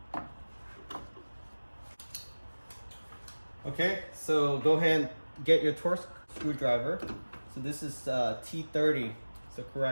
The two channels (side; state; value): both; inverted; correlation -1.00